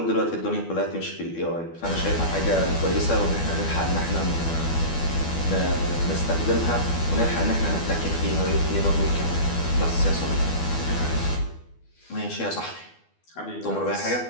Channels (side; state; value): right; late; 12 ms